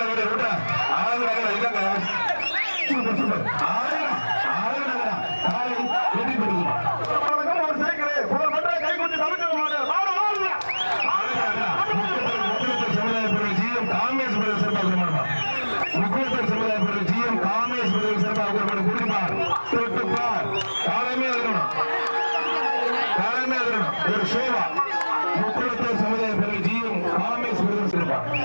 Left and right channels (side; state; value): both; inverted; correlation -1.00